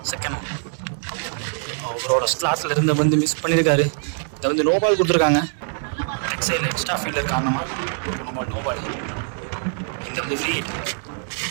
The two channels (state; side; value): silent; left; 63 dB below the other